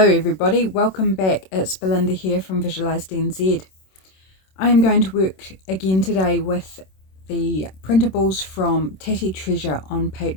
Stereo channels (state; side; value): late; right; 26 ms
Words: welcome back. It's Belinda here from Visualized NZ. I am going to work again today with the printables from Tatty Treasure on